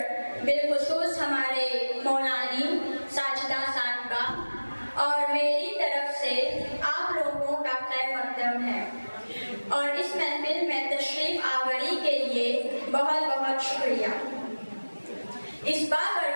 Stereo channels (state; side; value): inverted; both; correlation -1.00